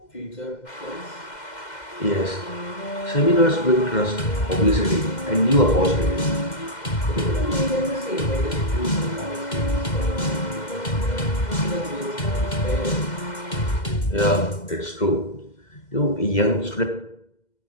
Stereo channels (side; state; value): right; late; 2.1 ms